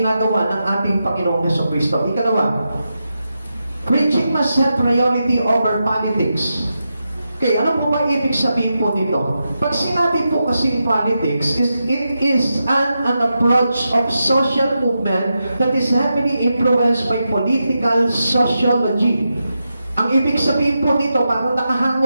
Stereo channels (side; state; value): both; inverted; correlation -0.88